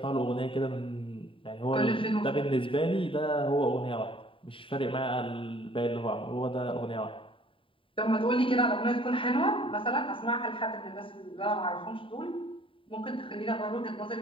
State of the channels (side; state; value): right; late; 0.25 ms